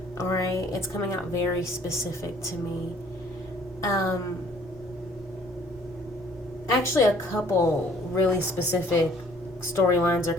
Alright, it's coming out very specific to me. Actually, a couple really specific storylines are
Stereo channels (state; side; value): normal; both; correlation 0.58